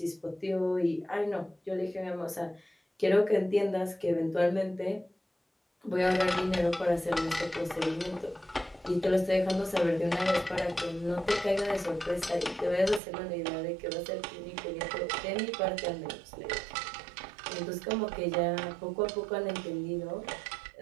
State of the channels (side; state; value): left; drops out; at 13.0 s